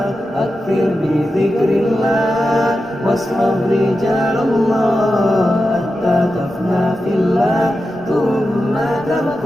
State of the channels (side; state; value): both; normal; correlation 0.91